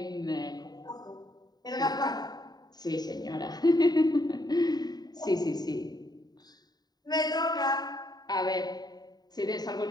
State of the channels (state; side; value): late; right; 0.20 ms